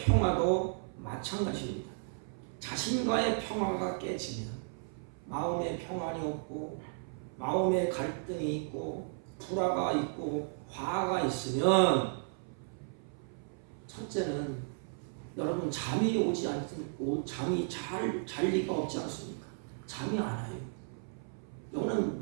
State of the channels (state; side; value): silent; left; 55 dB below the other